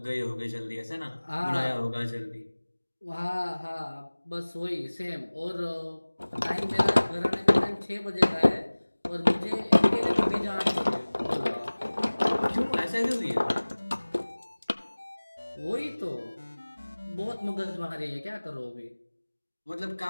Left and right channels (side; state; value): both; inverted; correlation -1.00